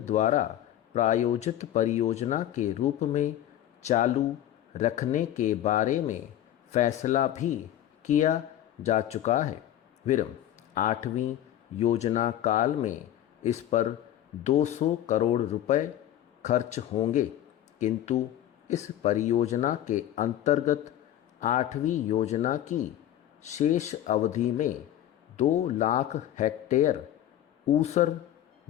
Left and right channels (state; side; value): quieter; right; 11.9 dB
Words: प्रायोजित परियोजना के रूप में चालू रखने के बारे में फैसला भी किया जा चुका है। विरम, 8वीं योजना काल में इस पर 200 करोड़ रुपए खर्च होंगे, किंतु इस परियोजना के अंतर्गत 8वीं योजना की शेष अवधि में 2 लाख हेक्टेयर ऊसर